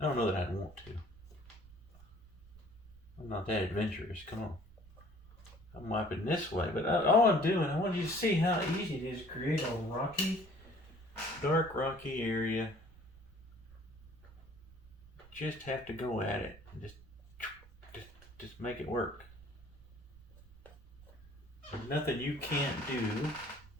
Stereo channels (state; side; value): noise; right; rumble, 22 dB below the sound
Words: I don't know that I'd want to. I'm not that adventurous. Come on. I'm wiping this way, but all I'm doing, I want you to see how easy it is to create a rocky, dark rocky area. Just have to go at it and just make it work. There's nothing you can't do